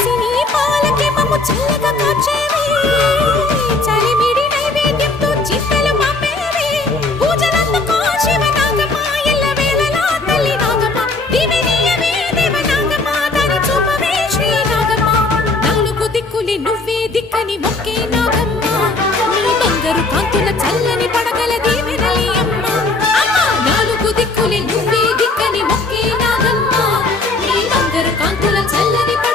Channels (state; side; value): quieter; right; 3.4 dB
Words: పాలకి మమ్ము చల్లగా కాచేవి చలిమిడి నైవేద్యంతో చింతలు మాపేవి పూజలందుకో శివ నాగమ్మ ఎల్లవేళలా తల్లి నాగమ్మ దివినీయవే దేవ నాగమ్మ దాని చూపవే శ్రీ నాగమ్మ నాలుగు దిక్కులి నువ్వే దిక్కని మొక్కే నాగమ్మ నీ బంగారు కాంతుల చల్లని పడగల దీవెనలి అమ్మ అమ్మ నాలుగు దిక్కులి నువ్వే దిక్కని మొక్కే నాగమ్మ నీ బంగారు కాంతుల చల్లని